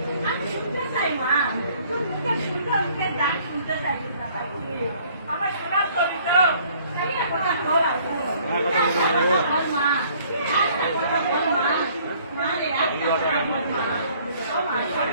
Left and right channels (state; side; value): inverted; both; correlation -0.59